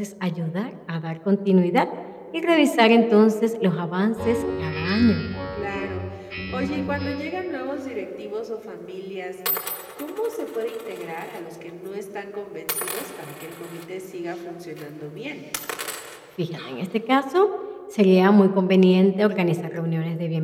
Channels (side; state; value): both; identical; correlation 1.00